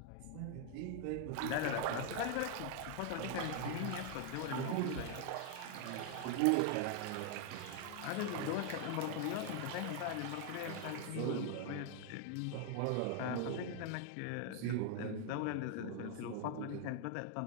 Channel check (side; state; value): both; different; correlation 0.00